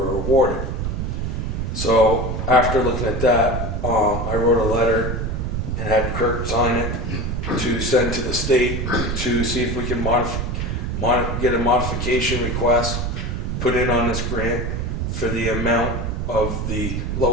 awarded. So after looking at that, I wrote a letter and had Kirk sign it to send to the state to see if we can get a modification request put in on this grant for the amount of the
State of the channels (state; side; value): noise; right; rumble, 2 dB below the sound